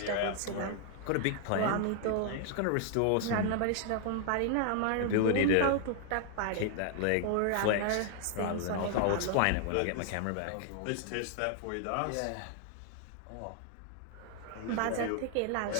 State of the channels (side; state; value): both; different; correlation 0.00